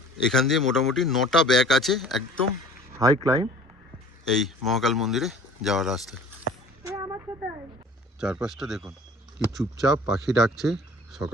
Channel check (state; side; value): normal; both; correlation 0.47